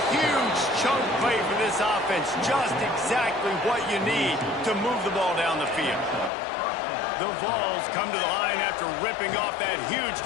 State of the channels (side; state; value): right; drops out; at 6.3 s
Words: huge chunk play for this offense. Just exactly what you need to move the ball down the field. The Vols come to the line after ripping off that huge